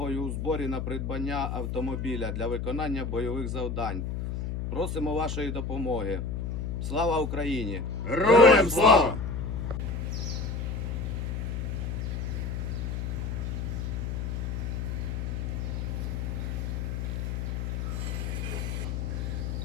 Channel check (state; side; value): noise; left; hum, 2 dB below the sound